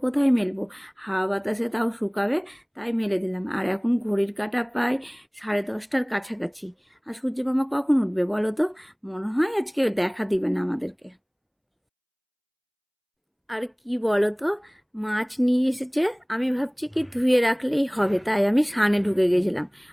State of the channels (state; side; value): identical; both; correlation 1.00